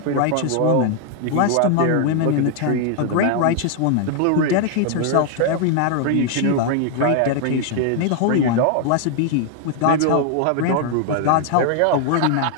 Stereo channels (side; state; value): both; different; correlation 0.00